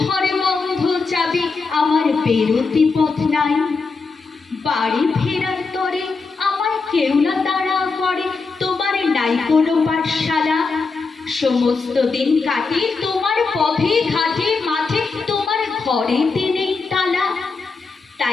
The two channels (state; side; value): quieter; right; 4.4 dB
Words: ঘরে বন্ধ চাবি, আমার বেরোতে পথ নাই। বাড়ি ফেরার তরে আমায় কেউ না তাড়া করে, তোমার নাই কোনো পাঠশালা। সমস্ত দিন কাটে তোমার পথে ঘাটে মাঠে, তোমার ঘরেতে নেই তালা।